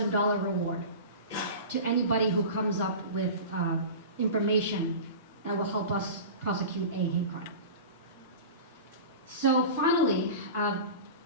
reward to anybody who comes up with information that will help us prosecute a hate crime. So finally,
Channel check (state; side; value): inverted; both; correlation -0.33